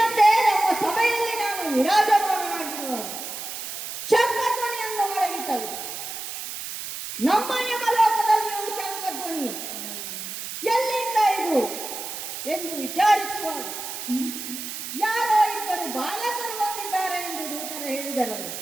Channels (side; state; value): right; noise; hiss, 7 dB below the sound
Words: ನಮ್ಮ ಸಭೆಯಲ್ಲಿ ನಾನು ವಿರಾಜಮಾನನಾಗಿರುವ ಶಂಖಧ್ವನಿಯನ್ನು ಮೊಳಗಿಸಲು ನಮ್ಮ ಯಮಲೋಕದಲ್ಲಿಯೂ ಶಂಖಧ್ವನಿ ಎಲ್ಲಿಂದ ಇದು ಎಂದು ವಿಚಾರಿಸುವಾಗ ಯಾರೋ ಇಬ್ಬರು ಬಾಲಕರು ಬಂದಿದ್ದಾರೆ ಎಂದು ದೂತರು ಹೇಳಿದರಲ್ಲ.